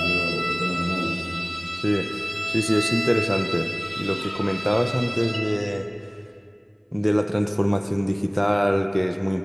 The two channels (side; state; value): both; identical; correlation 1.00